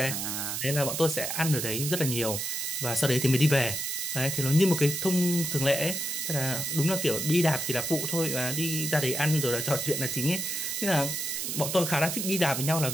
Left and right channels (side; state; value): right; noise; hiss, 2 dB below the sound